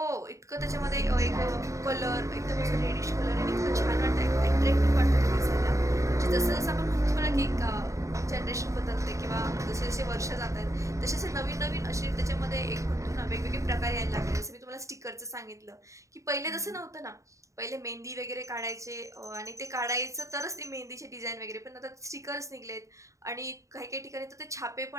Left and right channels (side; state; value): left; late; 0.15 ms